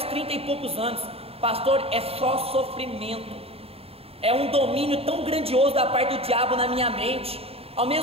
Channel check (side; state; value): left; late; 0.28 ms